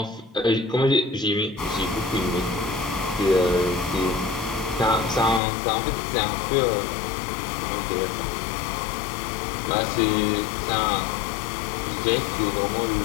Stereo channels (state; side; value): drops out; right; at 5.4 s